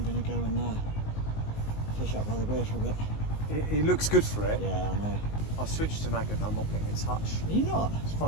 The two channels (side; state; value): right; late; 19 ms